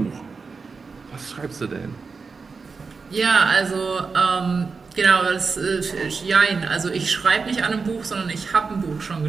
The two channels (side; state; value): left; quieter; 4.8 dB